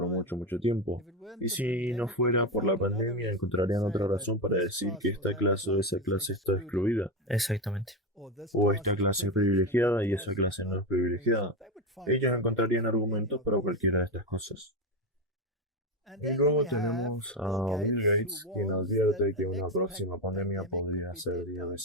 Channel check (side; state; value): both; normal; correlation 0.14